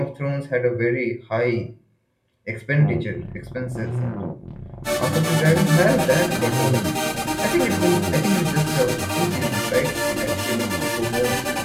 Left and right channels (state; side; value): identical; both; correlation 1.00